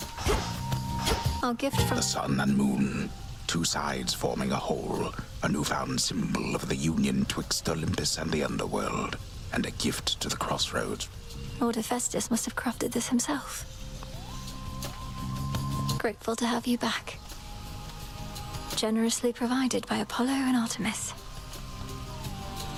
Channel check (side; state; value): both; identical; correlation 1.00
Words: Our gift from... The sun and moon, two sides forming a whole, a newfound symbol of the union twixt Olympus and the underworld, and a gift to the crossroads. Lord Hephaestus must have crafted this himself. Grateful to have you back. Generously provided by Apollo and Artemis.